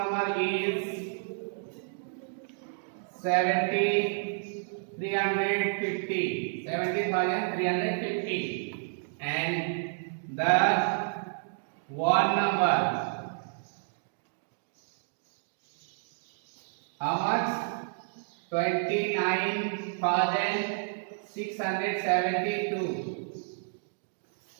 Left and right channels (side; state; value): left; silent; digital silence